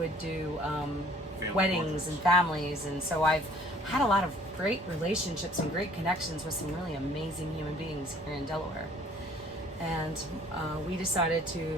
do weddings portraits. and families, and so I've had a lot of great relationships and great connections with some really amazing human beings here in Delaware. And we decided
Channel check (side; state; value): both; normal; correlation 0.56